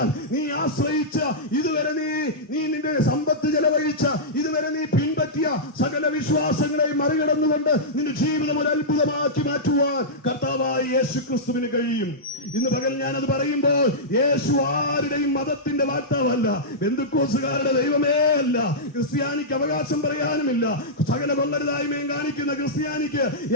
നീ ആശ്രയിച്ച, ഇതുവരെ നീ നിന്റെ സമ്പത്ത് ചെലവഴിച്ച, ഇതുവരെ നീ പിൻപറ്റിയ സകല വിശ്വാസങ്ങളെ മറികടന്നുകൊണ്ട് നിന്റെ ജീവിതം ഒരു അത്ഭുതമാക്കി മാറ്റുവാൻ കർത്താവായ യേശു ക്രിസ്തുവിന് കഴിയും. ഇന്ന് പകൽ ഞാനത് പറയുമ്പോൾ, യേശു ആരുടെയും മതത്തിന്റെ വാക്താവല്ല, ബന്ധുക്കോസുകാരുടെ ദൈവമേ അല്ല, ക്രിസ്ത്യാനിക്ക് അവകാശം പറയാനുമില്ല. സകല കൊള്ളരുതായ്മയും കാണിക്കുന്ന ക്രിസ്ത്യാനിക്ക്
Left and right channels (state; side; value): normal; both; correlation -0.12